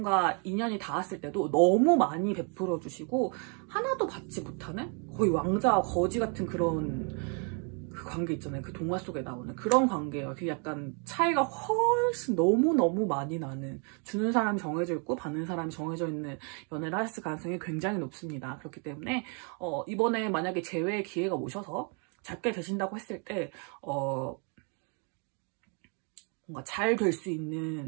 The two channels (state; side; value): quieter; left; 37.9 dB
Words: 인연이 닿았을 때도 너무 많이 베풀어 주시고 하나도 받지 못하는 거의 왕자와 거지 같은 그런 그 관계 있잖아요. 그 동화 속에 나오는 그런 관계예요. 그 약간 차이가 훨씬 너무 많이 나는, 주는 사람이 정해져 있고 받는 사람이 정해져 있는 연애를 하실 가능성이 굉장히 높습니다. 그렇기 때문에 이번에 만약에 재회의 기회가 오셔서 잡게 되신다고 했을 때 뭔가 잘 될 수